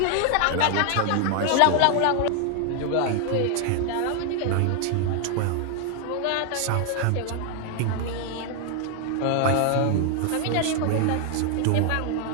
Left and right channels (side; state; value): both; different; correlation 0.00